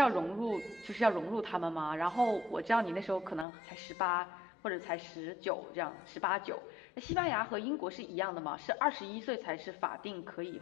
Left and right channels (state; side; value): drops out; right; at 3.5 s